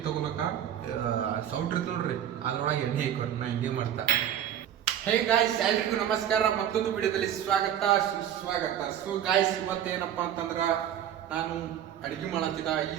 ತಗೊಳಕ ಸೌಟ್ ಇರ್ತದೆ ನೋಡ್ರಿ ಅದ್ರೊಳಗೆ ಎಣ್ಣೆ ಹಾಕೋರಿ ನಾ ಹಿಂಗೆ ಮಾಡ್ತಾ. ಹೇ ಗಾಯ್ಸ್, ಎಲ್ರಿಗೂ ನಮಸ್ಕಾರ, ಮತ್ತೊಂದು ವಿಡಿಯೋದಲ್ಲಿ ಸ್ವಾಗತ ಸುಸ್ವಾಗತ. ಸೊ ಗಾಯ್ಸ್, ಇವತ್ತೇನಪ್ಪ ಅಂತಂದ್ರ ನಾನು ಅಡುಗೆ ಮಾಡತ್ತಿದ. ಈ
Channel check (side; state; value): left; quieter; 10.2 dB